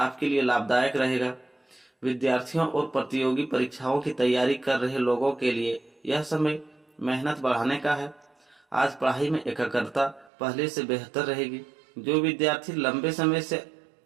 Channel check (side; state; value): left; drops out; at 10.3 s